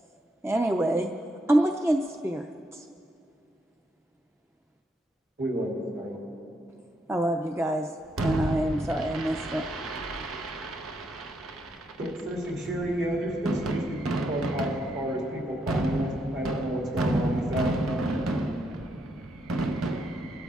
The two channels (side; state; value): both; normal; correlation 0.78